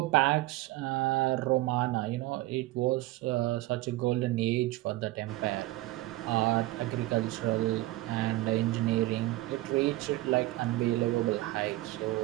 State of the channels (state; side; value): quieter; left; 18.7 dB